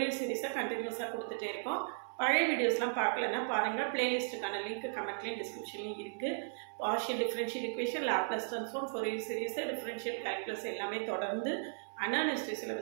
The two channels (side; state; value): left; silent; 54 dB below the other